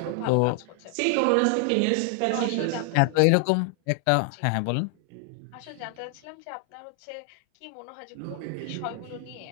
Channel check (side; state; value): both; different; correlation 0.00